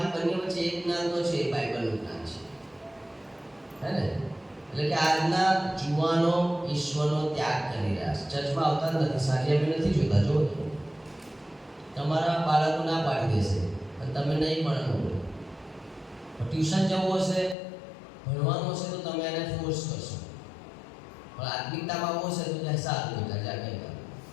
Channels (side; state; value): right; drops out; at 17.6 s